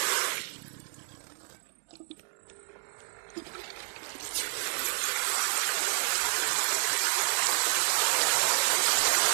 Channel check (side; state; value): left; silent; digital silence